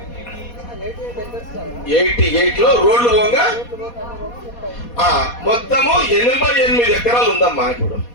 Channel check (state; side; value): late; right; 4.2 ms